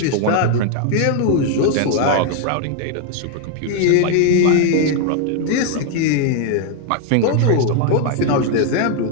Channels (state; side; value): different; both; correlation 0.00